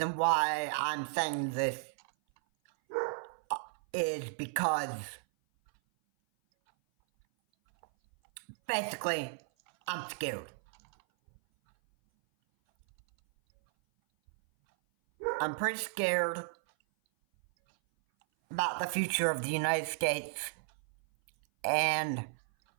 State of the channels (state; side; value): silent; left; 55 dB below the other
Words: why I'm saying this is because basically I'm scared. I'm pretty scared about the future of the United States, and